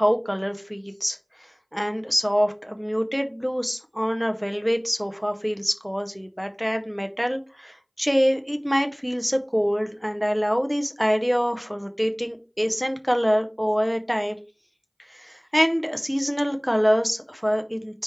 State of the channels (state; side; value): identical; both; correlation 1.00